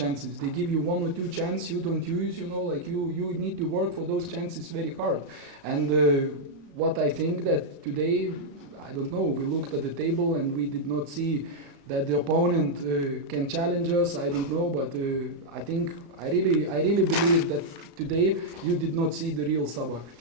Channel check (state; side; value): late; left; 34 ms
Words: They give you 1 or 2 chances you don't use, like you need to work for those chances very hard. And what I think that today, I don't know, we looked at the table and we did not see that the opponent can challenge us. I don't know, but I think I really believe that today you did not see the real Sabah.